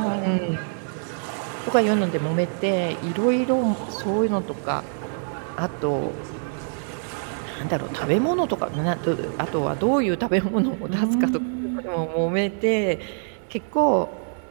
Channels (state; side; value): silent; left; 62 dB below the other